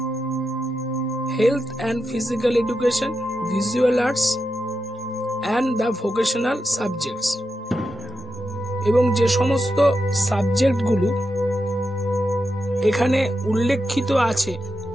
health and physical education, visual arts and the vocational subjects. এবং যে সমস্ত সাবজেক্টগুলো এখানে উল্লেখিত আছে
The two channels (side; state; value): both; normal; correlation 0.87